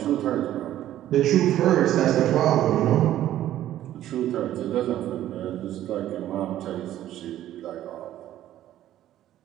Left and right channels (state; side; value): quieter; left; 12.8 dB